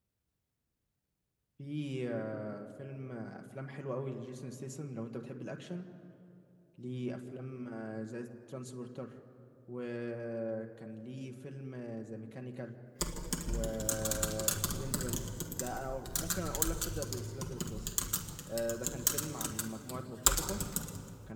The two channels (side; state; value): both; identical; correlation 1.00